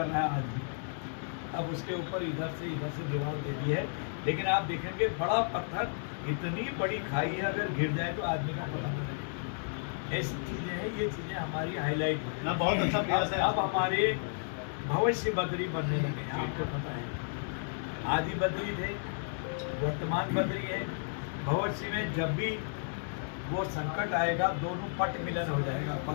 रहा है आज भी। अब उसके ऊपर इधर से दीवार दे दी है, लेकिन आप देखेंगे बड़ा पत्थर, इतनी बड़ी खाई है, अगर गिर जाए तो आदमी का पता नहीं लगेगा। ऐसी चीजें हैं, ये चीजें हमारी हाईलाइट हो ना, बहुत अच्छा प्रयास है। अब हमारे भविष्य बद्री बनने लगे हैं, आपको पता है। आदि बद्री थे, वर्तमान बद्री है। भविष्य में जब भी वो संकट आएगा, दोनों पट मिलन हो जाएगा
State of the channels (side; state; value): right; silent; digital silence